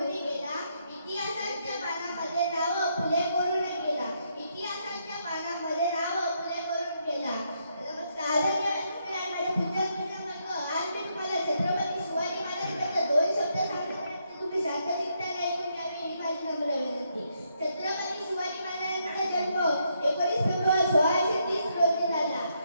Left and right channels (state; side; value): inverted; both; correlation -0.76